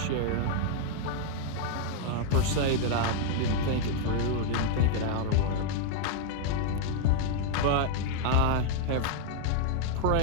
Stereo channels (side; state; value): both; different; correlation 0.00